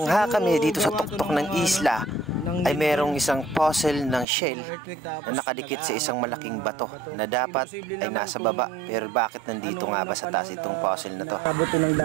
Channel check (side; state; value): left; drops out; at 4.2 s